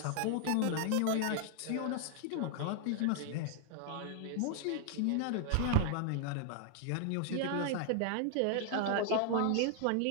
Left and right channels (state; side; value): different; both; correlation 0.00